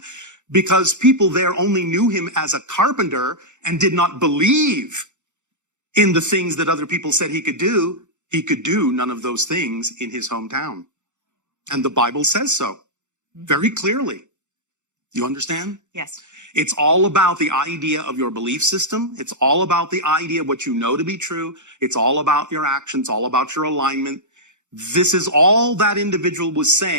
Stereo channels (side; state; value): left; late; 0.84 ms